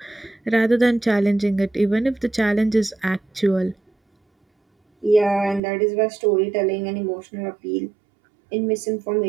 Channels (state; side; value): drops out; left; at 5.6 s